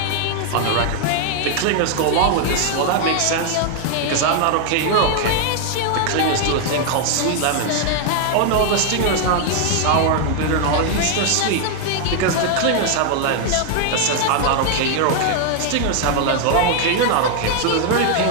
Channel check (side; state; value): both; different; correlation 0.00